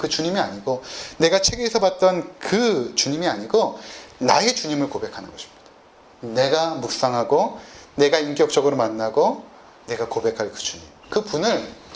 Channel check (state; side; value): identical; both; correlation 1.00